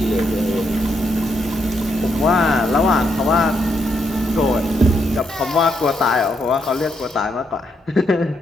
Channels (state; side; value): normal; both; correlation 0.78